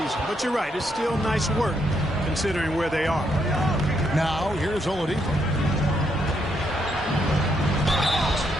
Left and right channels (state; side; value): normal; both; correlation 0.76